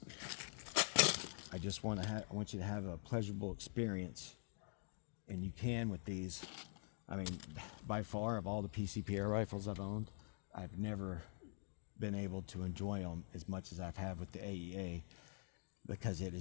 I just want you to have a pleasurable experience, and you can with these. I mean, by far, of all the PCP air rifles I've owned, I've never been able to enjoy them as much as I've had with the AEA, because it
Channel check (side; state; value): right; silent; digital silence